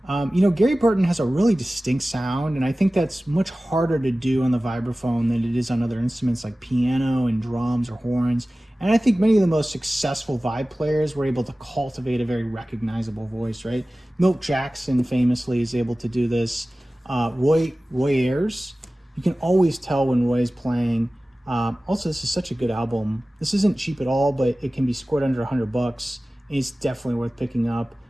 Gary Burton has a really distinct sound, and I think that's much harder to do on the vibraphone than it is on other instruments like piano and drums or horns. And I think many of the most successful vibe players were able to cultivate a very recognizable voice, right? Milt Jackson famously is able to do this. Roy Ayers, you can always tell when Roy's playing. Also, this is such a good album. This isn't cheap at all, but it can be scored under $100. And it's definitely worth picking up.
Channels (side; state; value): both; normal; correlation 0.97